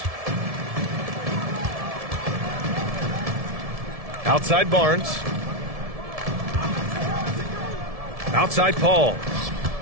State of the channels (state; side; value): late; left; 1.7 ms